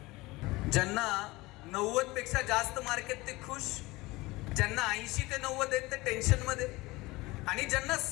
ज्यांना 90 पेक्षा जास्त मार्क आहेत ते खुश, ज्यांना 80 ते 90 आहेत ते टेन्शन मध्ये आणि ज्यांना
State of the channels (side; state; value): right; quieter; 21.3 dB